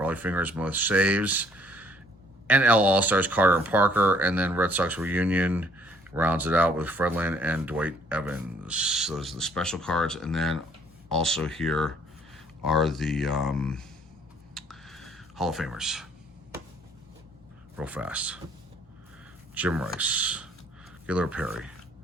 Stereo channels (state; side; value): normal; both; correlation 0.61